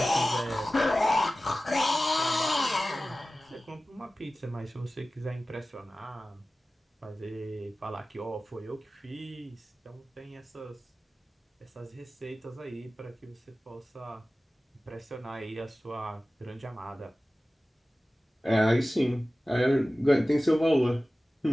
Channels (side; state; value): both; normal; correlation 0.96